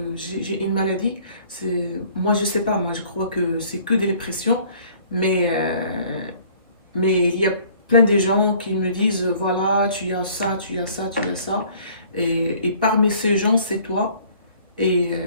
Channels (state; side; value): inverted; both; correlation -0.55